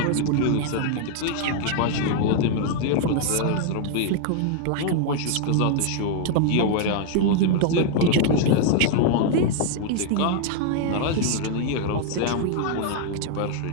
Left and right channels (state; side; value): different; both; correlation 0.00